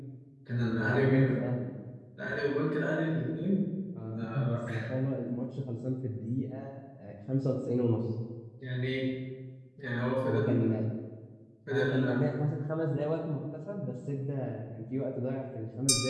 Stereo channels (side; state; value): both; identical; correlation 1.00